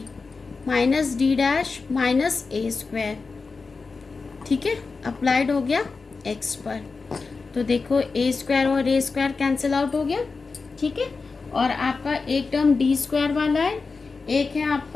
minus D dash minus A square. ठीक है, applied हो गया x पर, तो देखो ए स्क्वायर और ए स्क्वायर कैंसिल आउट हो गया। ठीक है, और आपका एक टर्म डी स्क्वायर वाला है, एक है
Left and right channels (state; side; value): quieter; right; 4.4 dB